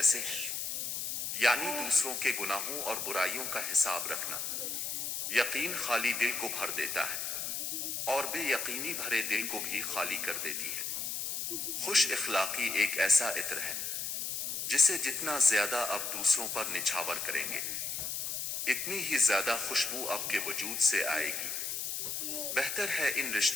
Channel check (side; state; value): left; noise; hiss, 3 dB below the sound